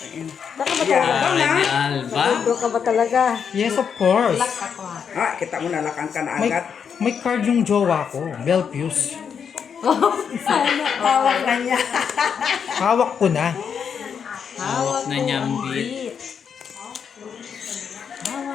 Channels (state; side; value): quieter; right; 7.0 dB